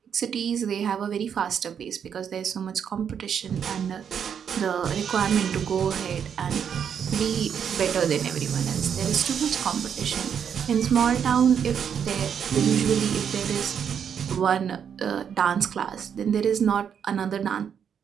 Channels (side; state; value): left; quieter; 7.8 dB